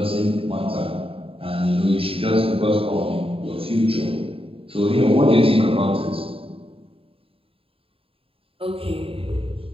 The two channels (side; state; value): left; late; 0.27 ms